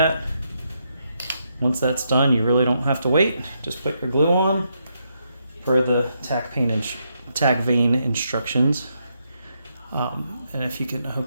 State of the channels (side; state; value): both; inverted; correlation -0.80